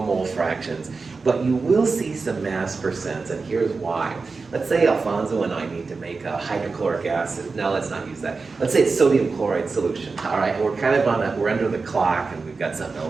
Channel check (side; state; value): left; quieter; 4.3 dB